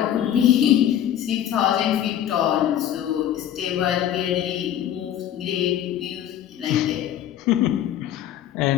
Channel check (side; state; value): right; quieter; 10.9 dB